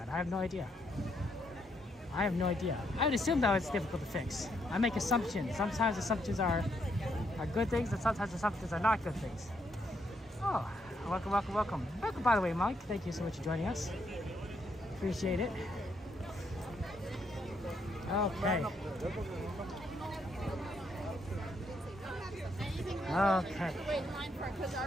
I have no idea. I would assume that it's difficult to fix. I make assumptions. Sometimes assumptions are good things, and sometimes assumptions are not good things. Oh, welcome. Welcome, by the way, Mike. Thank you so much for joining us. Appreciate it. Okay.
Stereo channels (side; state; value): both; normal; correlation 0.75